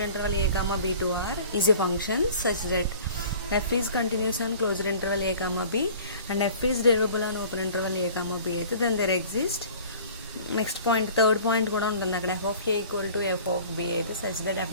interval a comma b to r is a function such that f is continuous on closed interval a comma b and f is derivable on open interval a comma b అయితే then there exist next point third point కూడా ఉంటుంది అక్కడ. f of a equal to f of b అయితే such that f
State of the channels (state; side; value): inverted; both; correlation -0.46